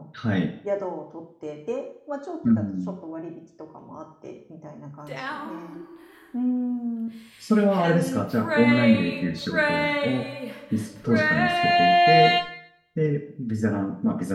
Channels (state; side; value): identical; both; correlation 1.00